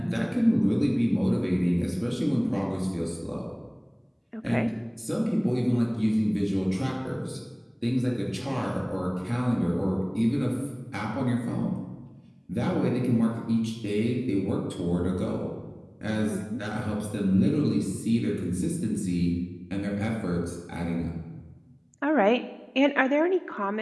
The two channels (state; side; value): identical; both; correlation 1.00